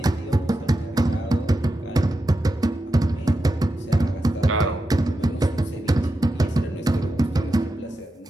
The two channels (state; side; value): normal; both; correlation 0.89